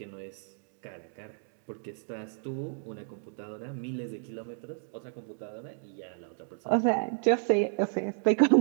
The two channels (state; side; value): silent; left; 57 dB below the other